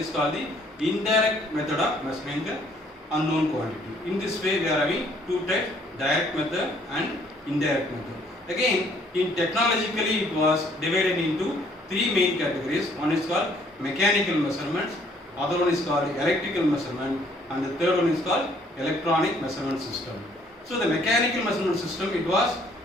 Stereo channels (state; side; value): normal; both; correlation 0.62